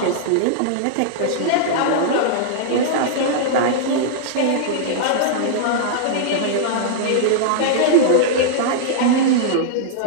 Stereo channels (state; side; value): different; both; correlation -0.02